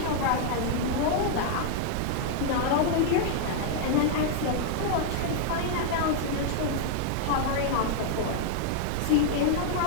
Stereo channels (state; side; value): different; both; correlation 0.00